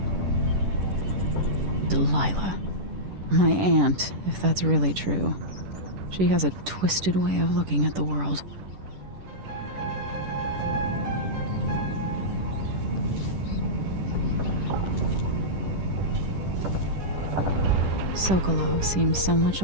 Delilah. My aunt, if that's really true. She has a twisted way of looking at the world. Sokolov seems so much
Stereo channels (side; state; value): left; late; 10 ms